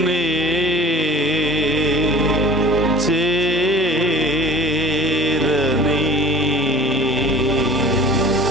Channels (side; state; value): both; normal; correlation 0.44